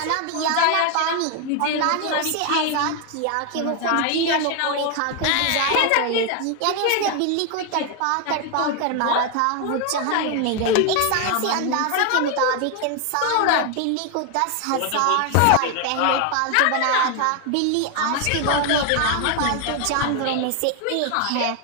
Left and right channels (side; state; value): both; different; correlation 0.01